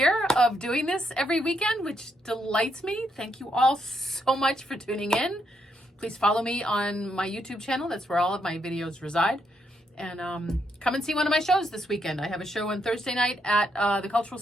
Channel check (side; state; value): both; normal; correlation 0.77